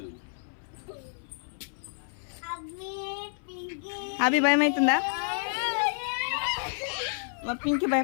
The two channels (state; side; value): silent; right; 58 dB below the other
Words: అభి భయం అవుతుందా? మా పింకీ